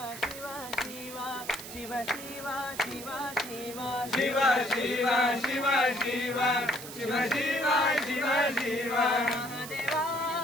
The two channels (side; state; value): right; noise; hiss, 12 dB below the sound